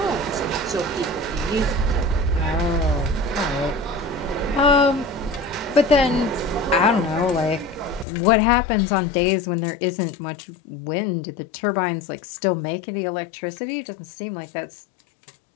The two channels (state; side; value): drops out; right; at 8.1 s